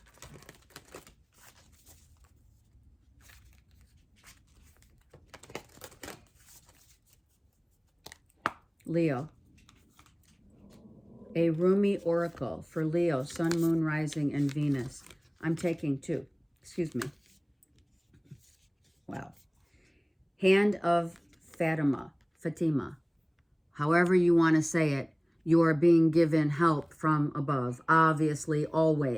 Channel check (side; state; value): both; identical; correlation 1.00